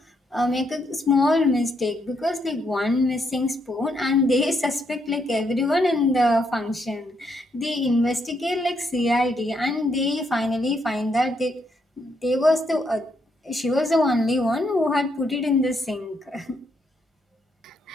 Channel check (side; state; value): both; normal; correlation 0.76